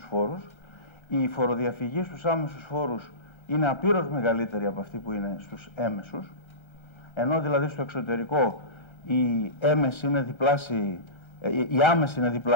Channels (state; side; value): late; right; 1.3 ms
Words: φόρους. Η φοροδιαφυγή στους άμεσους φόρους είναι απείρως μεγαλύτερη από αυτή που είναι στους έμεσους, ενώ δηλαδή στο εξωτερικό η έμεση είναι διπλάσια, η άμεση είναι